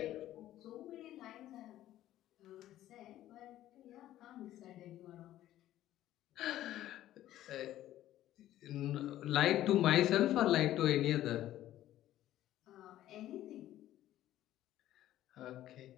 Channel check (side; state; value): right; quieter; 13.5 dB